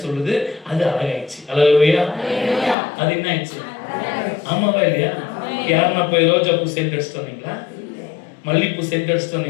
சொல்லுது. அது அழகாயிடுச்சு. அல்லேலூயா. அது என்ன ஆயிடுச்சு? ஆமாவா இல்லையா? யாருன்னா போய் ரோஜா பூ சென்ட் அடிச்சுட்டு வந்தீங்களா? மல்லிப்பூ சென்ட் அடிச்சுட்டு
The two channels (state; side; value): drops out; right; at 2.8 s